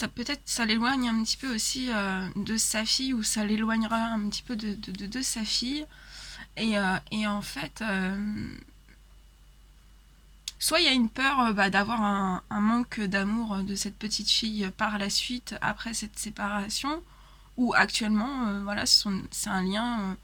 peut-être ça l'éloigne un petit peu aussi de sa fille, ou ça l'éloignera un petit peu de sa fille, et en fait soit il y a une peur d'avoir un manque d'amour de cette petite fille par la suite après cette séparation, ou actuellement voilà c'est un lien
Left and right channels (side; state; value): both; identical; correlation 1.00